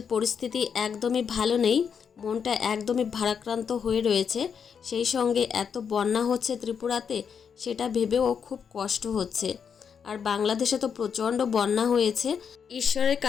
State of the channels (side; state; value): right; quieter; 6.9 dB